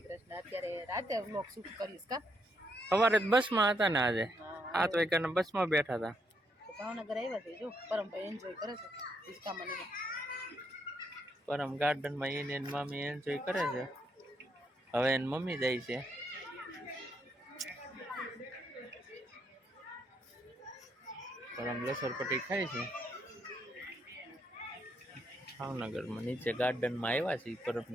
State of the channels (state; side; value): normal; both; correlation 0.76